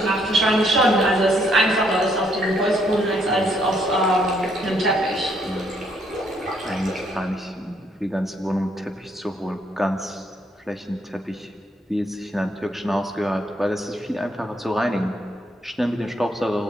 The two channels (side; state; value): both; normal; correlation 0.71